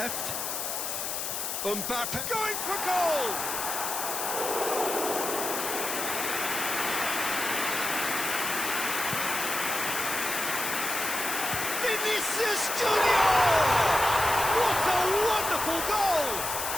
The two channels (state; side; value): noise; left; hiss, 3 dB below the sound